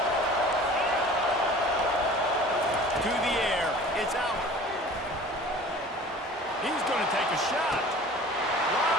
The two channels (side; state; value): both; normal; correlation 0.44